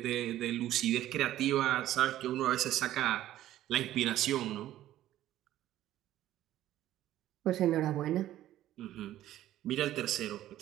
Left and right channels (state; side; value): quieter; left; 13.4 dB